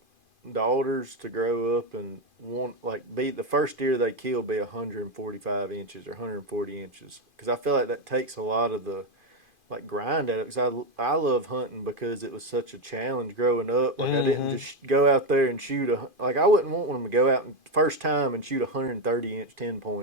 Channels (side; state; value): left; late; 2.5 ms